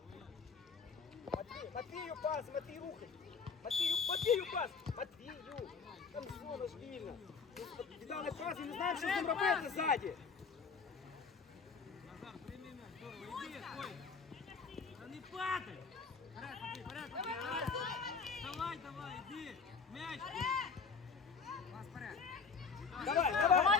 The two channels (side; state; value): right; quieter; 5.3 dB